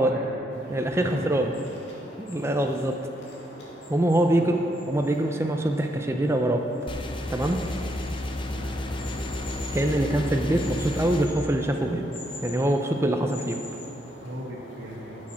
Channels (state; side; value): normal; both; correlation 0.77